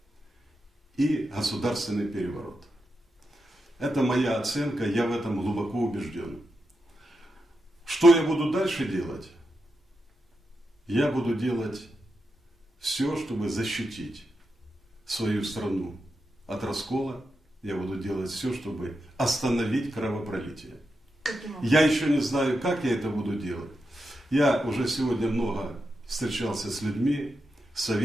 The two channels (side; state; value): both; normal; correlation 0.87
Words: и государственный переворот. Это моя оценка, я в этом глубоко убежден. Что я буду дальше делать? Я буду делать все, чтобы защитить свою страну от раскола. Я буду делать все, чтобы остановить кровопролитие. Я еще не знаю, как я это буду делать. Я уже сегодня много встречался с людьми,